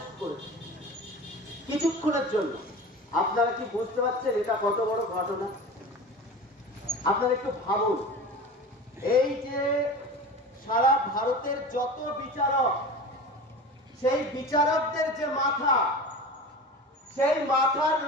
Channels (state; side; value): normal; both; correlation 0.33